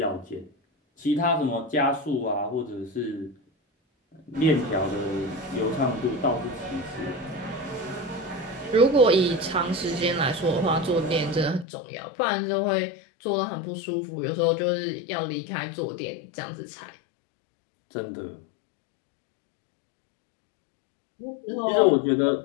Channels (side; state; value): right; drops out; at 11.7 s